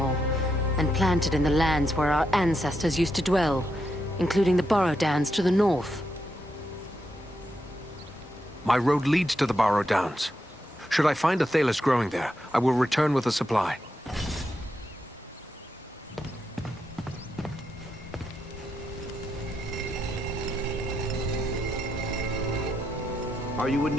and planted in the lands where our ancestors used to dwell, including the Barrow Downs to the north. My road leads to the Barrow Downs. Should I find Athelas growing there, I will return with a supply. Are you in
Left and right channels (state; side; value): normal; both; correlation 0.83